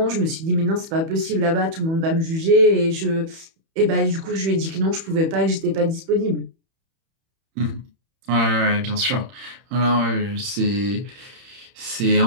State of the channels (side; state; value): left; late; 31 ms